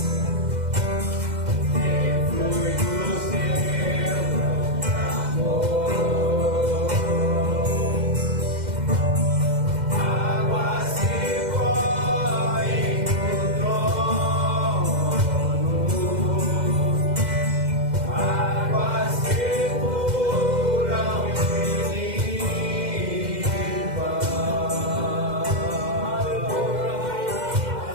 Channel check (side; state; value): left; late; 2.1 ms